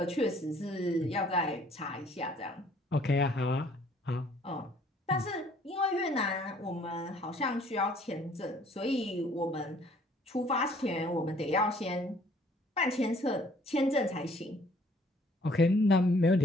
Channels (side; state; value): both; normal; correlation 0.59